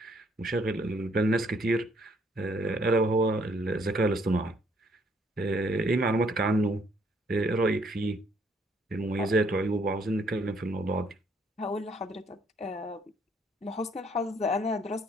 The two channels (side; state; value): both; normal; correlation 0.67